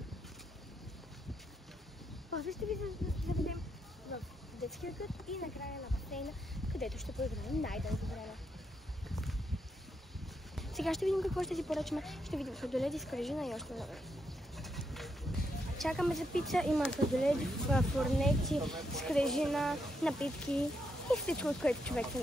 После ще ви заведем в детския кът и накрая на басейна, където ще поиграем най-дълго време. Сега ще видим какво ще си поръчаме. Ще видим сладоледи, скрижина и още много. Чакаме за пица. Има сладоледи, фурнети, скрижина, напитки и всичко, от което човек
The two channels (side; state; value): both; normal; correlation 0.81